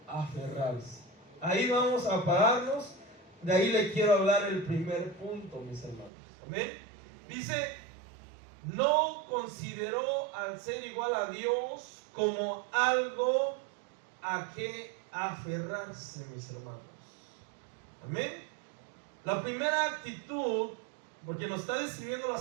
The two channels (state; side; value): drops out; left; at 6.1 s